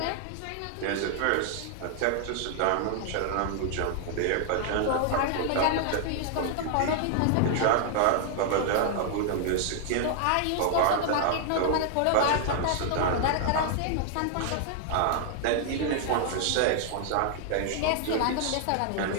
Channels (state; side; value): different; both; correlation 0.00